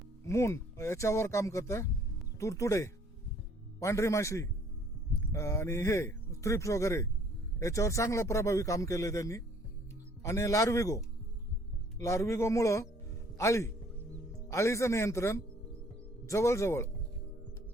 मून याच्यावर काम करतं, तुडतुडे, पांढरी माशी आणि हे थ्रिप्स वगैरे याच्यावर चांगलं प्रभावी काम केलं त्यांनी. आणि लार्विगोमुळं आळीचं नियंत्रण जवळजवळ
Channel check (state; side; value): normal; both; correlation 0.59